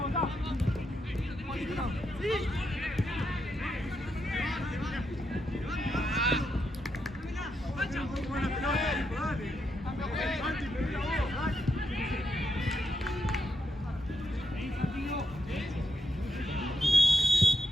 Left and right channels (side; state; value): both; normal; correlation 0.82